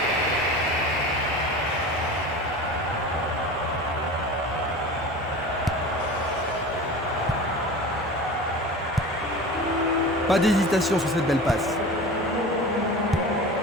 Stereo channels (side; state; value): both; normal; correlation 0.34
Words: Pas d'hésitation sur cette belle passe.